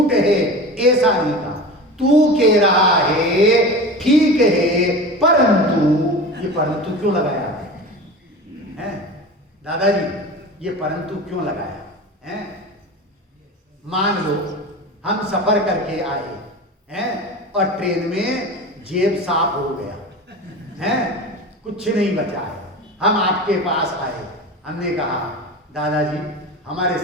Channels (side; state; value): both; normal; correlation 0.31